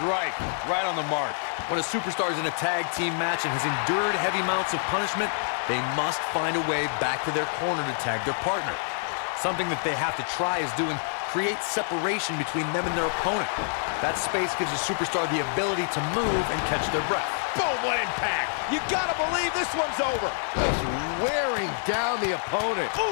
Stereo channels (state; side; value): silent; right; digital silence